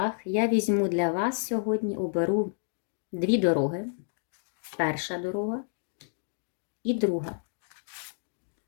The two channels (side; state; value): right; silent; digital silence